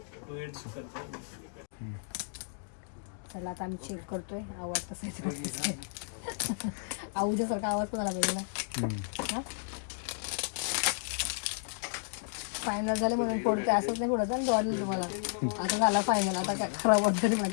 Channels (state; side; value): silent; right; digital silence